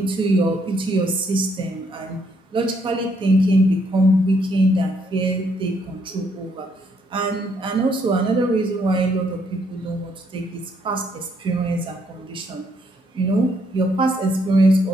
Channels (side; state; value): both; normal; correlation 0.71